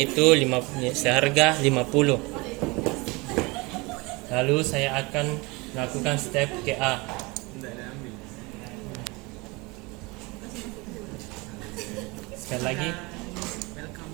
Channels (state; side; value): quieter; left; 25.5 dB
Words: seharga 50. Lalu saya akan melakukan step KA. Sekali lagi.